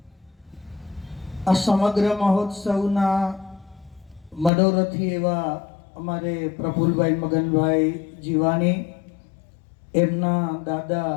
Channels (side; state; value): right; drops out; at 4.5 s